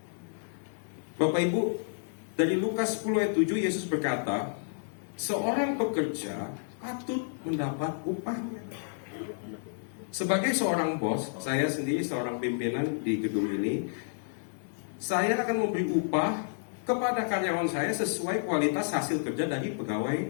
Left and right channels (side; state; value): right; silent; digital silence